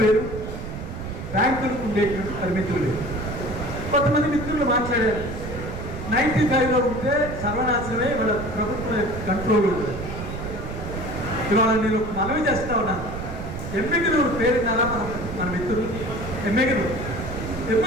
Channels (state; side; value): noise; right; rumble, 8 dB below the sound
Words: వేరు, బ్యాంకులకు ఉండేటువంటి పరిమితులు వేరు. కొంతమంది మిత్రులు మాట్లాడారు 95లో ఉంటే సర్వనాశనమే వాళ్ళ ప్రభుత్వం కంట్రోల్ ఉంటుంది. ఇవాళ నేను మనవి చేస్తా ఉన్నాను. ఎమ్మిగినూరు పేరున్నారా మన మిత్రులు?